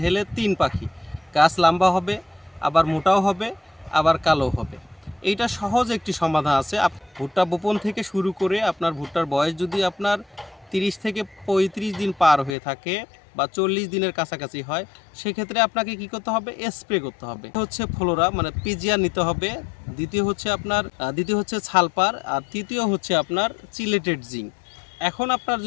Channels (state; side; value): drops out; right; at 12.6 s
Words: তিন পাখি, গাছ লম্বা হবে, আবার মোটাও হবে, আবার কালো হবে। এইটা সহজ একটি সমাধান আছে। ভুট্টা বপন থেকে শুরু করে আপনার ভুট্টার বয়স যদি আপনার 30 থেকে 35 দিন পার হয়ে থাকে বা 40 দিনের কাছাকাছি হয়, সেক্ষেত্রে আপনাকে কি করতে হবে? স্প্রে করতে হবে। হচ্ছে ফ্লোরা মানে পিজিআর নিতে হবে, দ্বিতীয় হচ্ছে সালফার, আর তৃতীয় হচ্ছে আপনার চিলেটেড জিঙ্ক। এখন আপনার